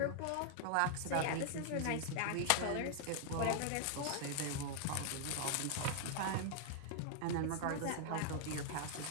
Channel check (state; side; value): different; both; correlation 0.00